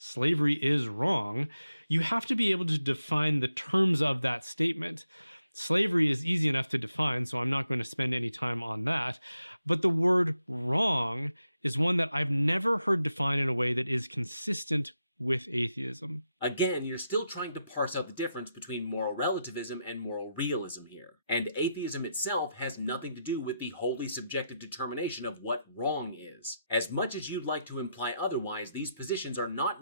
is wrong, you have to be able to define the terms of that statement. Slavery is easy enough to define, so I'm not going to spend any time on that. But the word wrong is one that I've never heard defined in a way that is consistent with atheism. Again, you're still trying to parse out the difference between moral relativism and moral realism here. And atheism itself has nothing to do with the wholly subjective determination of what wrong is. As much as you'd like to imply otherwise, these positions are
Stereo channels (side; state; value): both; inverted; correlation -0.85